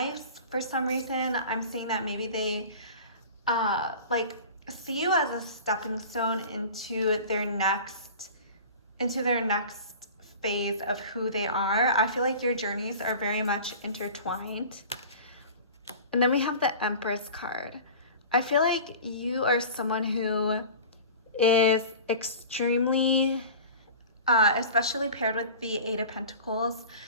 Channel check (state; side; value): inverted; both; correlation -0.38